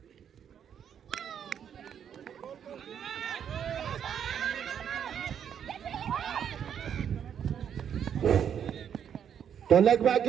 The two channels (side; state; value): left; quieter; 8.5 dB